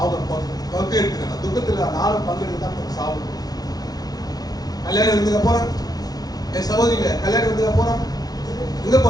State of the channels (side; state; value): right; late; 0.19 ms